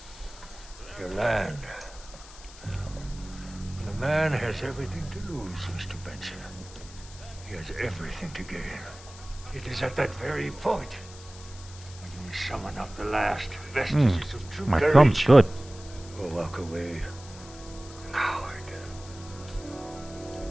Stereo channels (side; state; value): left; noise; hiss, 18 dB below the sound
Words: Your land. When a man has everything to lose, Mr. Benson, he has everything to gain. It is at that very point when you summon up the last vestiges of true My courage. thumb's good. Or walk away, coward.